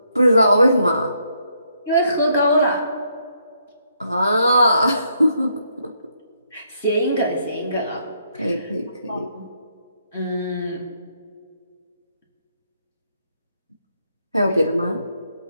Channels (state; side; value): inverted; both; correlation -0.74